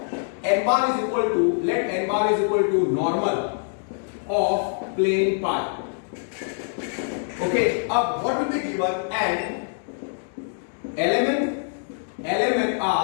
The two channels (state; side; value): silent; right; digital silence